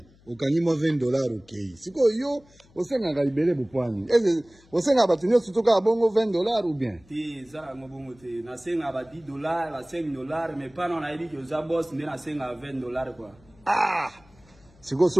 Ukanyima $20 okay. Siko yo osenga galibele bupwani. Eze osenga batunyo sutoka bongo $20 ou bien? Ti zara ngobongo te na senga ba $10 ba $5 mais pas na yidi que za boss ndena senga $20 quoi. Ah! Siko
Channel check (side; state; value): left; noise; hum, 28 dB below the sound